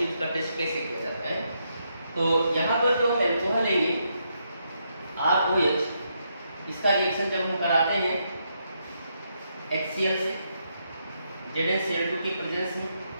इसका टेस्ट कैसे किया जाता है। तो यहाँ पर जो हम अल्कोहल लेंगे ROH, इसका रिएक्शन जब हम कराते हैं HCl से ZnCl2 की प्रेजेंस में,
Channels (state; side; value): inverted; both; correlation -0.79